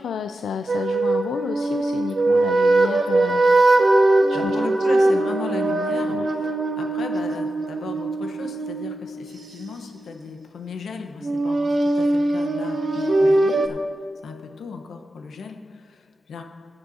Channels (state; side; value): normal; both; correlation 0.91